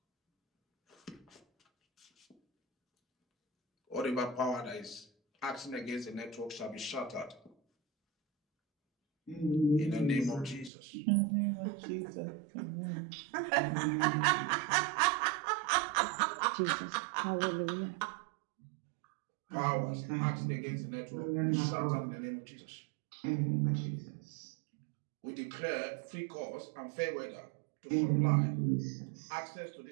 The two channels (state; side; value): drops out; left; at 10.7 s